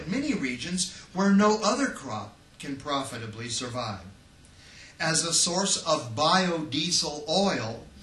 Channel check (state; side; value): identical; both; correlation 1.00